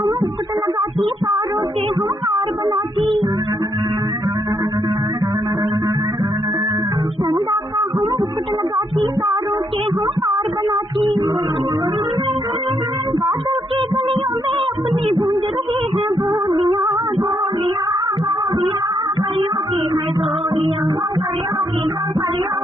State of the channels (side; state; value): both; normal; correlation 0.76